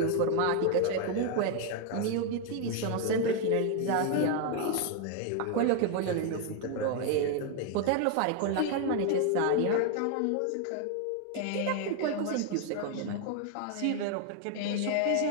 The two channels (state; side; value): different; both; correlation 0.01